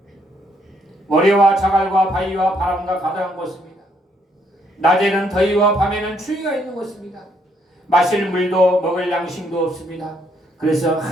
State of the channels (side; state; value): both; normal; correlation 0.71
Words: 모래와 자갈과 바위와 바람과 가득한 곳입니다. 낮에는 더위와 밤에는 추위가 있는 곳입니다. 마실 물도 먹을 양식도 없습니다. 그래서